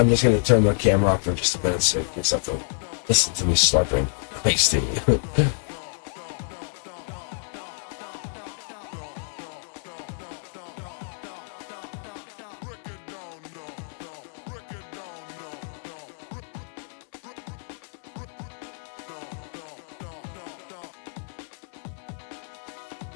just going to turn the camera off for just a minute so you guys have to listen to me slurping iced tea.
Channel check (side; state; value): right; silent; 60 dB below the other